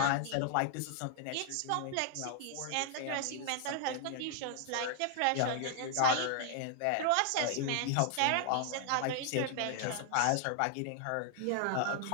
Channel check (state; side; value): different; both; correlation 0.00